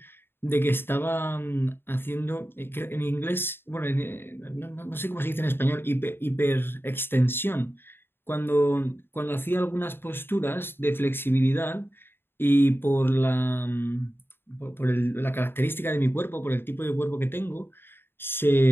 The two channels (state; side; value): late; right; 0.11 ms